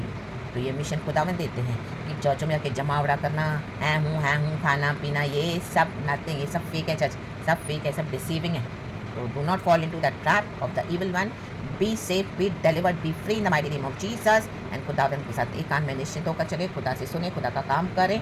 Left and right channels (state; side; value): identical; both; correlation 1.00